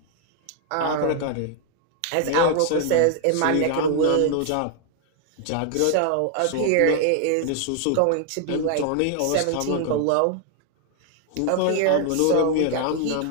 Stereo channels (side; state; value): both; different; correlation 0.00